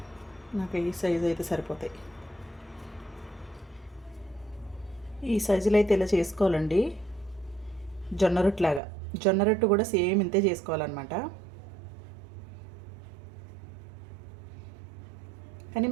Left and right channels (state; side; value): drops out; left; at 8.8 s